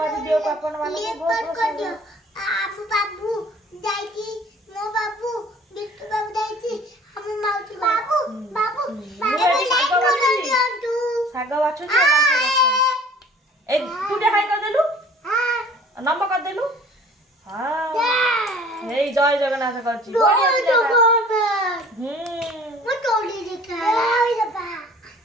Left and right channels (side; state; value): both; normal; correlation 0.49